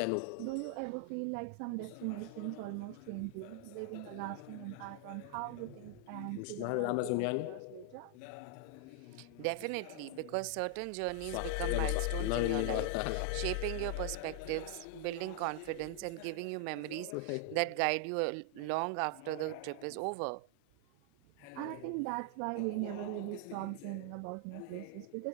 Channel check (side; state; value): both; different; correlation 0.00